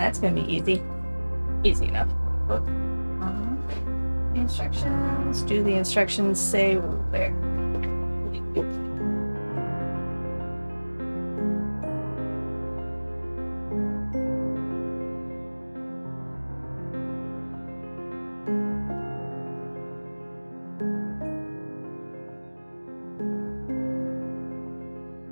gonna be easy. Easy enough. Instructions. Do the instructions say where?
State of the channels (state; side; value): inverted; both; correlation -1.00